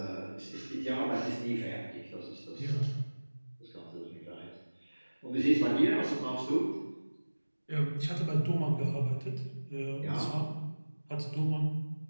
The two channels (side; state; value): both; inverted; correlation -1.00